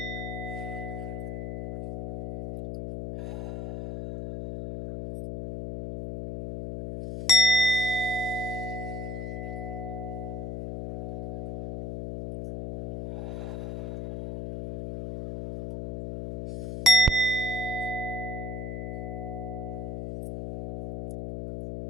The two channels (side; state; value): left; noise; hum, 4 dB below the sound